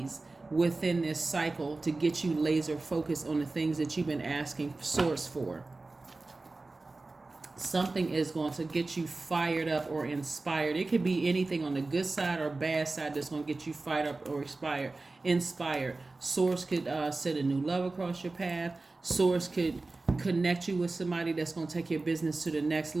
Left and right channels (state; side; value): quieter; left; 3.4 dB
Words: within this cycle to get you laser focused on the things that you've been asking Source for. Something is going to get you fired up or inspired. It could be anything on the good side or bad side that's going to get you fired up or inspired. Source could set a new love across your path. Source could connect you with somebody that's going to take your business to the next